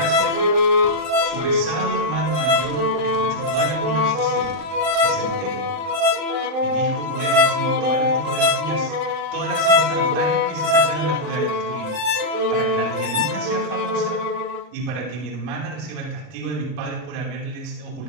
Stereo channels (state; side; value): late; left; 39 ms